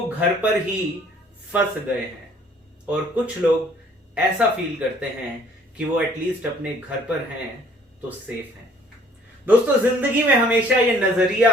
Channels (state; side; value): normal; both; correlation 0.57